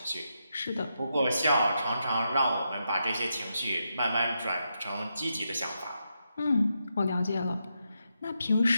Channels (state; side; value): inverted; both; correlation -0.84